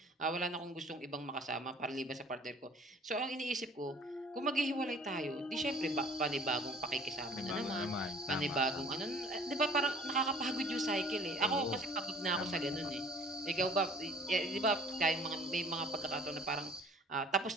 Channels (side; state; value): both; normal; correlation 0.52